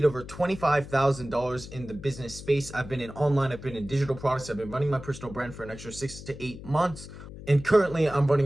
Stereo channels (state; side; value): noise; left; hum, 14 dB below the sound